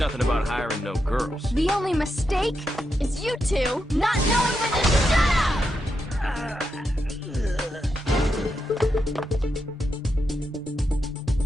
about hiring no girls. The only mistake is you two not knowing when to shut up!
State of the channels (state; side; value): normal; both; correlation 0.85